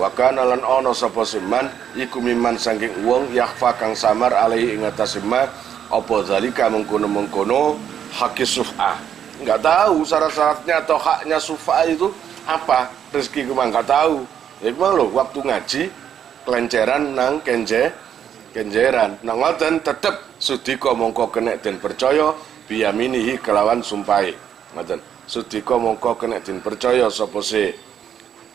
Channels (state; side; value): quieter; left; 9.0 dB